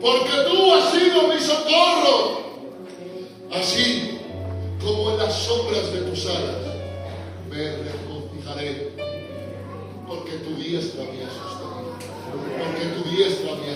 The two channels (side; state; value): both; identical; correlation 1.00